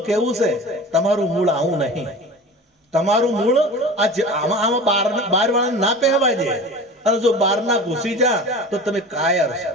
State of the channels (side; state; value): both; normal; correlation 0.36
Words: કેવું છે. તમારું મૂળ આવું નહીં. તમારું મૂળ આમાં બાર વાળા ના પહેવા દે, અને જો બાર ના ઘૂસી જા તો તમે કાયર છો.